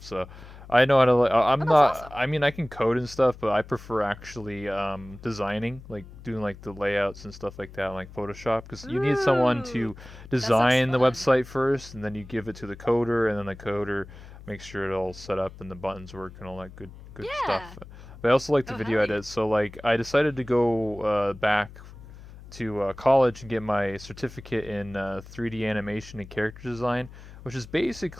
So, I know how to. Oh, I'm that's not. awesome. I mean, I can code and stuff, but I prefer actually designing, like doing like the layouts and stuff like that, like Photoshop, because you need someone Ooh, to that sounds design the fun. website first, and then you give it to the coder, and then the coder makes sure it all set up and the buttons work and all that good stuff. Yeah. But I also like to Oh, video hell yeah. edit, so like I decided to go back to college and get my certificate in 3D animation and character design, which is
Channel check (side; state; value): left; noise; hum, 17 dB below the sound